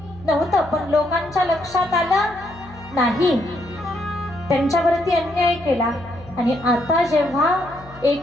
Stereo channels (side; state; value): left; noise; hum, 20 dB below the sound